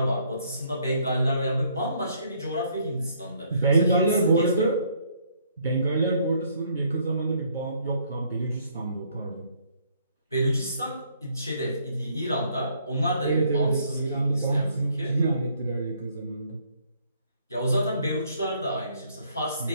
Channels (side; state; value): both; inverted; correlation -0.66